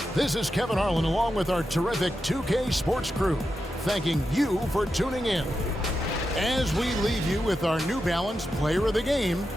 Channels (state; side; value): normal; both; correlation 0.88